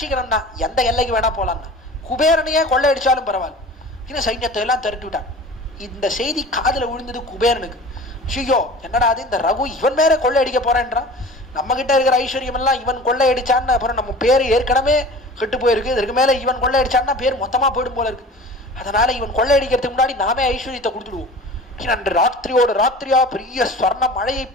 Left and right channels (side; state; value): both; normal; correlation 0.40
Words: எந்த எல்லைக்கு வேணா போலாம்னா, குபேரனையே கொள்ளையடிச்சாலும் பரவாயில்ல இன்னும் சைன்யத்தை எல்லாம் திரட்டி விட்டான். இந்த செய்தி காதுல விழுந்தது குபேரனுக்கு. ஐயோ என்னடா அது, இந்த ரகு இவன் மேல கொள்ளையடிக்க போறேன்றான், நம்ம கிட்ட இருக்கிற ஐஸ்வர்யம் எல்லாம் இவன் கொள்ளையடிச்சான்னு அப்புறம் நம்ம பேர் ஏற்கனவே கெட்டு போயிருக்கு, இதற்கு மேல இவன் கொள்ளையடிச்சான்னா பேர் மொத்தமா போயிடும் போல இருக்கு, அதனால இவன் கொள்ளையடிக்கிறதுக்கு முன்னாடி நாமே ஐஸ்வர்யத்தை கொடுத்துடுவோம். அன்று ராத்திரியோட ராத்திரியா பெரிய ஸ்வர்ண மழையை